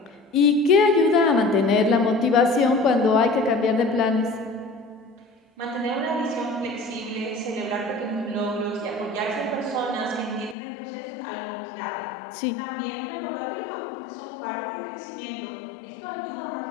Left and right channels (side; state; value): right; drops out; at 10.6 s